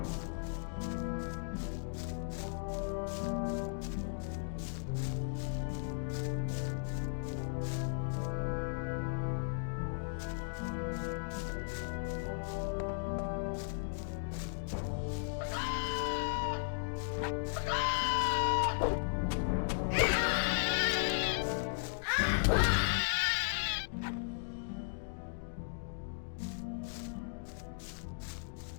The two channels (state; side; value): silent; right; digital silence